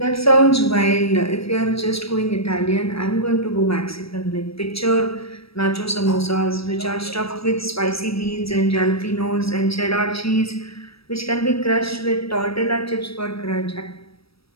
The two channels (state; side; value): late; right; 0.76 ms